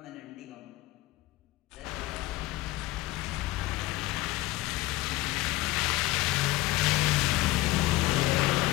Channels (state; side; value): quieter; right; 18.4 dB